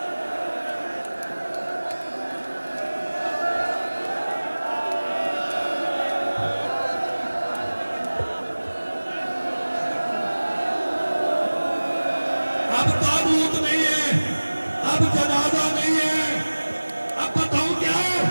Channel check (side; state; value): both; inverted; correlation -1.00